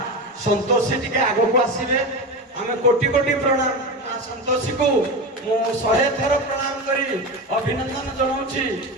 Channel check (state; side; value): normal; both; correlation 0.22